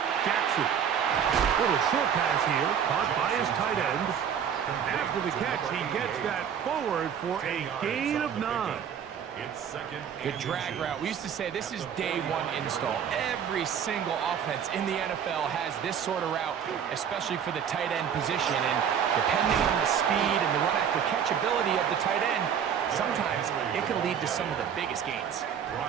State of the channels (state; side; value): quieter; left; 8.1 dB